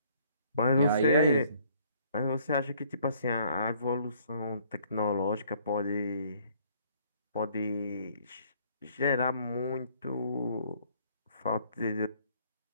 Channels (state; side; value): inverted; both; correlation -0.62